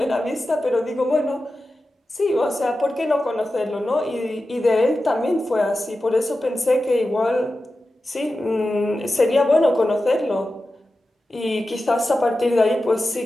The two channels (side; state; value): both; normal; correlation 0.93